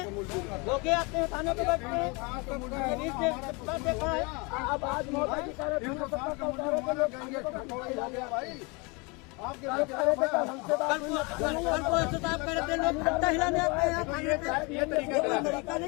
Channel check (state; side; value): quieter; right; 28.9 dB